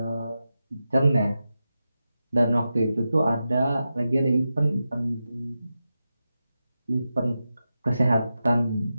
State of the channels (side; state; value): both; inverted; correlation -0.91